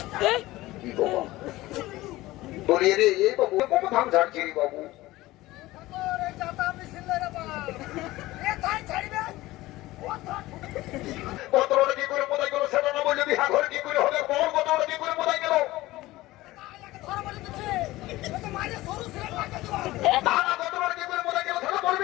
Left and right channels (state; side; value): quieter; right; 18.0 dB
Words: কি বাবা বলি রে এই বাবু কোন ধান ঝাড়ছি রে বাবু रे जाता मिसिल रे बा ए थाई छाड़बे কতটা কি করে মোদাই গেল সেটা না বললে বিহা ঘরে কি করে হবে বল কতটা কি করে মোদাই গেল ধর বলি দিছে ও তো মারে সরু সিরে পাকে দিবা না না কতটা কি করে মোদাই গেল সেটা